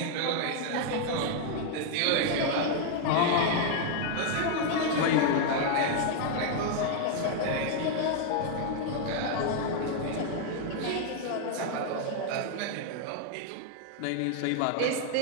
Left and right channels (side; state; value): both; different; correlation 0.00